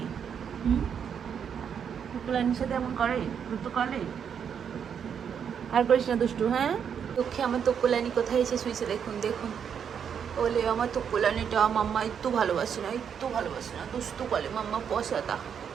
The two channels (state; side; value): quieter; left; 7.7 dB